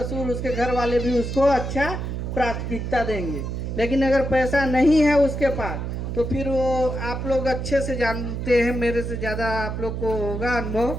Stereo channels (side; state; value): right; noise; hum, 4 dB below the sound